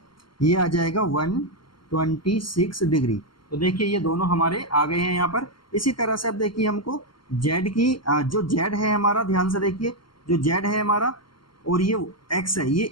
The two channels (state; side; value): late; right; 0.73 ms